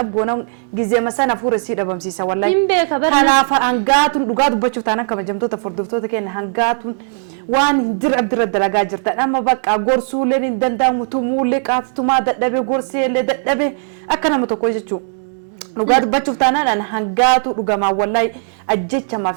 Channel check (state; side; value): silent; left; 68 dB below the other